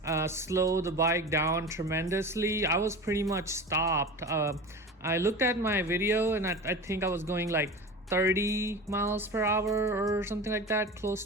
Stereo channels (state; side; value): normal; both; correlation 0.31